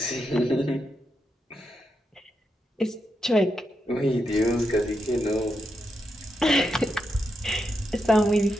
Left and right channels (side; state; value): both; normal; correlation 0.84